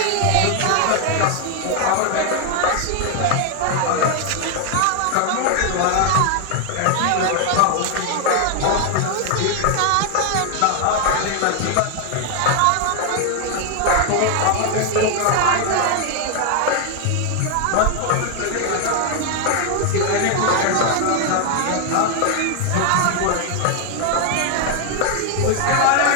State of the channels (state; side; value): different; both; correlation 0.00